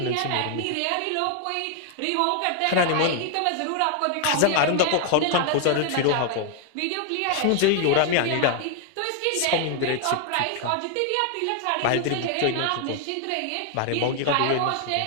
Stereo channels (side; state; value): both; different; correlation 0.00